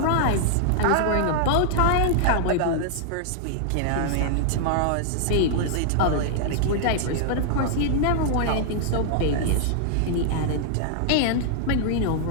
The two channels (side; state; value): both; different; correlation -0.01